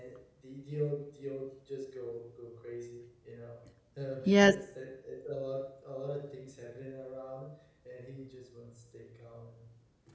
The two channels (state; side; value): identical; both; correlation 1.00